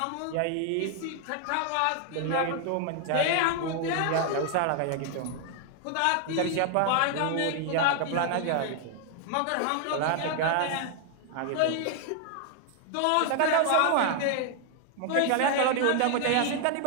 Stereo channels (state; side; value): different; both; correlation 0.00